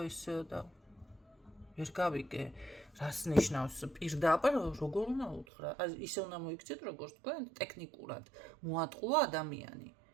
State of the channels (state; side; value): drops out; left; at 5.5 s